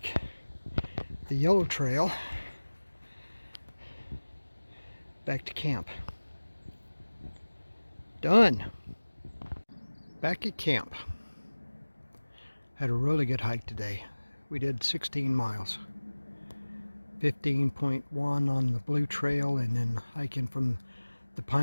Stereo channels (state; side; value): inverted; both; correlation -1.00